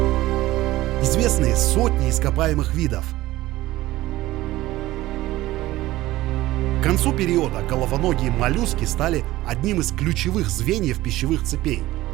Известны сотни ископаемых видов. К концу периода головоногие моллюски стали одним из ключевых звеньев пищевых цепей.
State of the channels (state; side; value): quieter; left; 16.9 dB